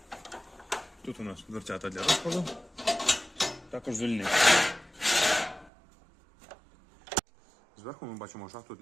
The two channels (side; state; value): left; drops out; at 5.7 s